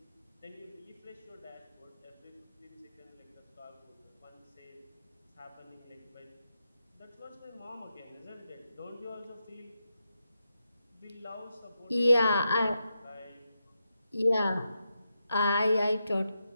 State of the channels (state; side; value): inverted; both; correlation -0.86